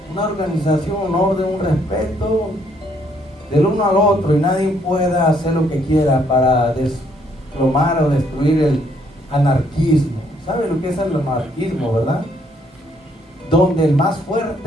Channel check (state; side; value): normal; both; correlation 0.69